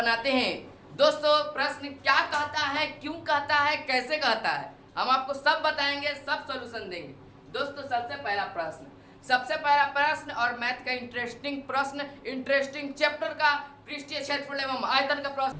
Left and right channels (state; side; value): identical; both; correlation 1.00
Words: हैं। दोस्तों प्रश्न क्या कहता है, क्यों कहता है, कैसे कहता है, हम आपको सब बताएंगे, सब सॉल्यूशन देंगे। दोस्तों सबसे पहला प्रश्न और मैथ का इंटरेस्टिंग प्रश्न, इंटरेस्टिंग चैप्टर का पृष्ठीय क्षेत्रफल एवं आयतन का प्रश्न।